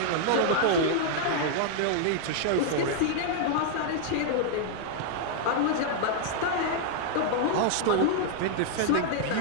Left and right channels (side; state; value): both; different; correlation -0.01